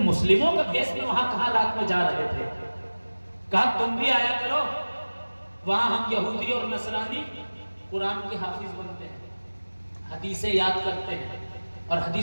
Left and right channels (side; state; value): both; inverted; correlation -1.00